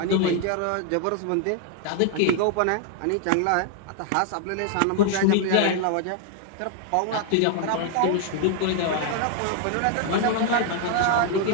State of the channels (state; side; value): different; both; correlation 0.00